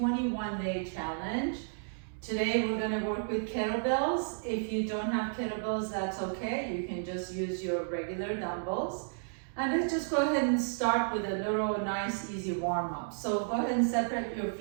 challenge. Today we're going to work with kettlebells. If you don't have kettlebells, that's okay. You can just use your regular dumbbells. And let's just go ahead and start with a little nice easy warm up. So go ahead and separate your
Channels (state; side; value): silent; left; digital silence